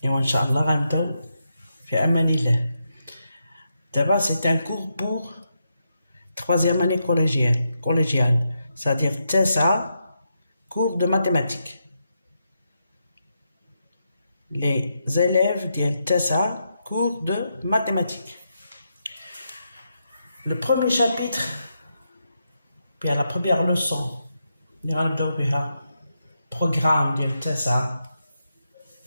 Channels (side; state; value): both; inverted; correlation -0.84